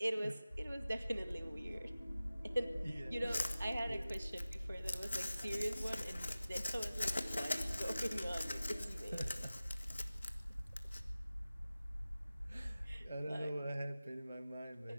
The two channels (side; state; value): both; inverted; correlation -0.96